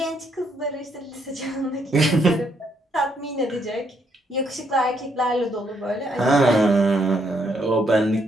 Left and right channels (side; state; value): both; normal; correlation 0.73